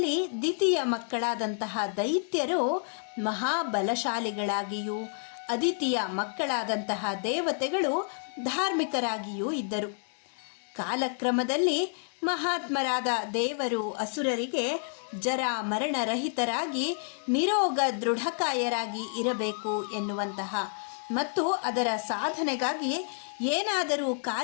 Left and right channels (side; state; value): right; silent; digital silence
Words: ದ್ವಿತೀಯ ಮಕ್ಕಳಾದಂತಹ ದೈತ್ಯರು ಮಹಾಬಲಶಾಲಿಗಳಾಗಿಯೂ ಅದಿತಿಯ ಮಕ್ಕಳಾದಂತಹ ದೇವತೆಗಳು ಧಾರ್ಮಿಕರಾಗಿಯೂ ಇದ್ದರು. ಕಾಲಕ್ರಮದಲ್ಲಿ ಮಹಾತ್ಮರಾದ ದೇವರು ಅಸುರರಿಗೆ ಜರ ಮರಣರಹಿತರಾಗಿ ನಿರೋಗ ದೃಢಕಾಯರಾಗಿ ಇರಬೇಕು ಎನ್ನುವಂತಹ ಮತ್ತು ಅದರ ಸಾಧನೆಗಾಗಿ ಏನಾದರೂ